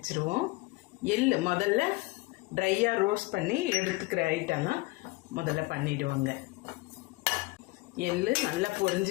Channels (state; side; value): quieter; right; 22.1 dB